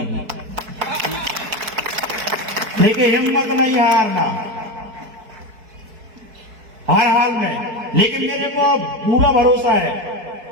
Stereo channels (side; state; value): left; late; 4.6 ms